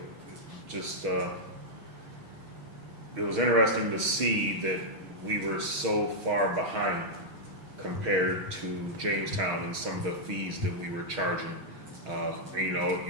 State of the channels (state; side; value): late; left; 6.4 ms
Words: just it was interesting to see that we were so far behind compared to Jamestown and some of the fees that we were charging. And,